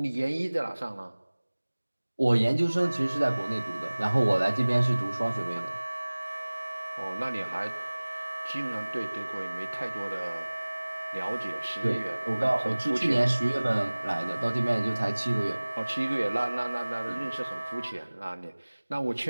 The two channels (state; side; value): inverted; both; correlation -1.00